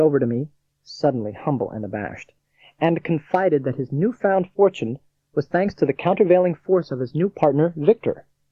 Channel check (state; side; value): identical; both; correlation 1.00